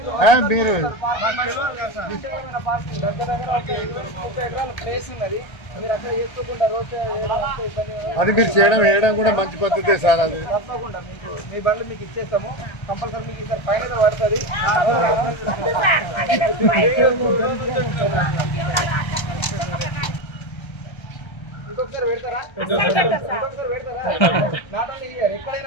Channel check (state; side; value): late; right; 1.3 ms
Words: మీరు ప్లేస్ ఉన్నది, మీరు అక్కడ చేసుకోకుండా రోజు అది మీరు చేయడం కూడా మంచి పద్ధతే సార్. అది తప్పకుండా మీకు మీ బండ్లు మీకు ఇచ్చేస్తాము. కంపల్సరీ మీకు ఇక్కడ ఫైన్ పడుతుంది. ఇంకొకసారి పెడతారా? నాట్ ఓన్లీ హియర్,